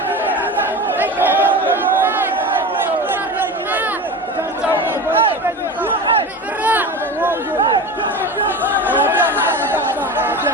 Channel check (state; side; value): normal; both; correlation 0.29